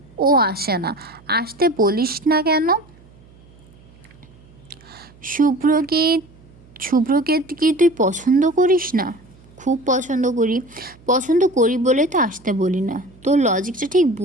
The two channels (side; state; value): right; noise; hum, 26 dB below the sound